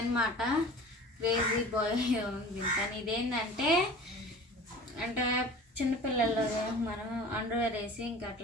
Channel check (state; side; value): normal; both; correlation 0.41